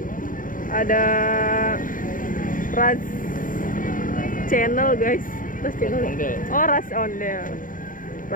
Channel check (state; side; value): late; right; 0.39 ms